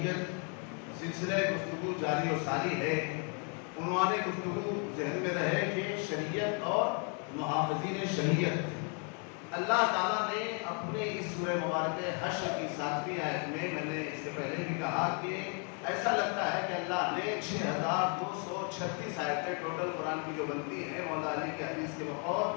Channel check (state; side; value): quieter; right; 38.6 dB